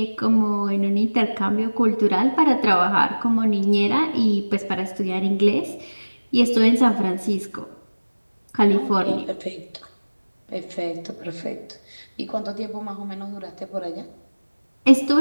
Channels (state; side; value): inverted; both; correlation -1.00